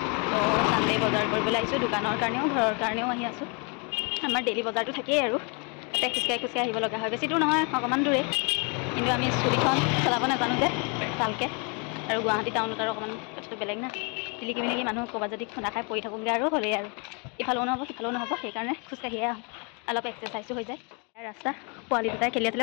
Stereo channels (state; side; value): quieter; right; 34.5 dB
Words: তো সানডে বজাৰ কৰিবলৈ আহিছোঁ দোকানৰ কাৰণেও ঘৰৰ কাৰণেও আহি আছোঁ আমাৰ ডেইলি বজাৰটো থাকেই আৰু তাতে খোজকাঢ়ি আহিব লগা হয় বেছি দূৰ নহয় অকণমান দূৰে কিন্তু আমি স্কুটিখন চলাব নাজানো যে ভালকৈ আৰু গুৱাহাটী টাউনত আৰু অকণমান কথাটো বেলেগ না তিলিকি মিলিকি মানুহ ক'ৰবাত যদি খুন্দা খাই পৰি থাকোঁগৈ আৰু হ'লেই আৰু ইফালেও নহ'ব সিফালেও নহ'ব সেইকাৰণে খোজকাঢ়িয়ে আহোঁ অলপ এক্সাৰচাইজো হৈ যায় ৰাস্তা পোৱালি দুটাই খেলি